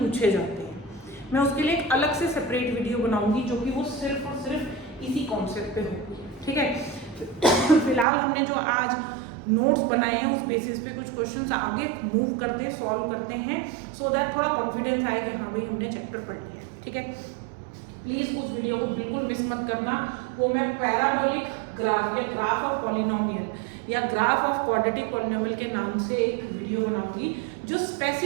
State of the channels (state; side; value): drops out; left; at 8.1 s